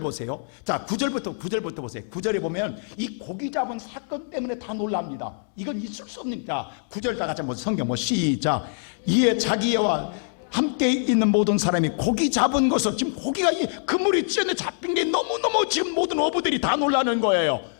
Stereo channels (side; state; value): right; silent; digital silence